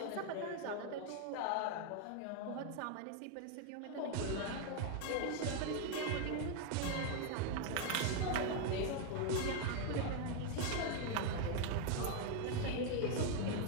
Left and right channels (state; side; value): different; both; correlation 0.01